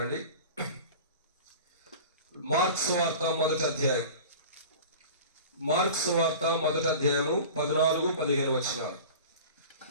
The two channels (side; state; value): both; inverted; correlation -0.38